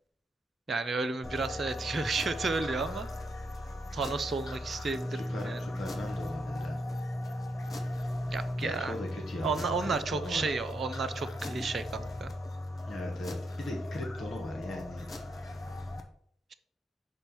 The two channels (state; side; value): normal; both; correlation 0.80